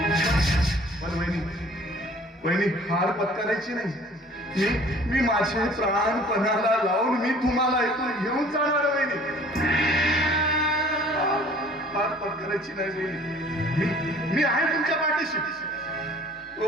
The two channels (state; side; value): normal; both; correlation 0.52